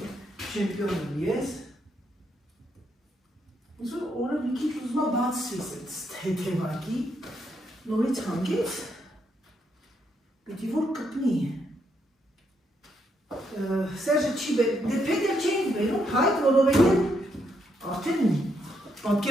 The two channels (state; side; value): normal; both; correlation 0.77